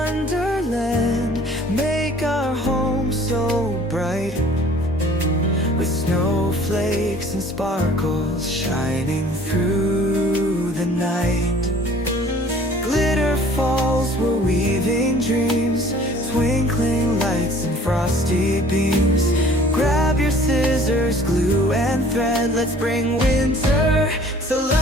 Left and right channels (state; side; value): normal; both; correlation 0.52